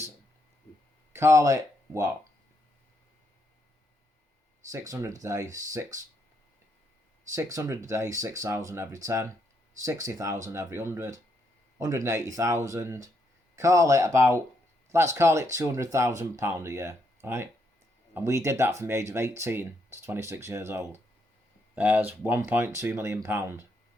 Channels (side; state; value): both; normal; correlation 0.76